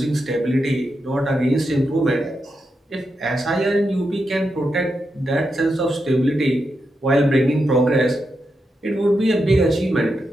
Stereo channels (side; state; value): both; normal; correlation 0.86